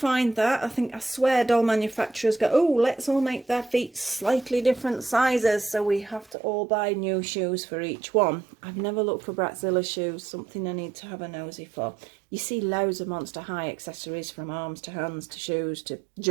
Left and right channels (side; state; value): left; drops out; at 6.4 s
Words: that. I swear doll manufacturers go, oh, let's all make their feet slightly different sizes. So we have to all buy new shoes for each one. I've never looked for Bratzilla shoes, something I need to have a nosy for. You see loads of Monster High accessories, from arms to hands to shoes to